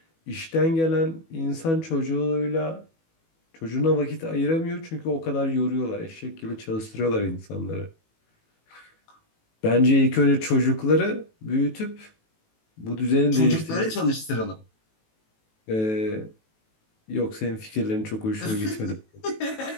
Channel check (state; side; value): late; right; 18 ms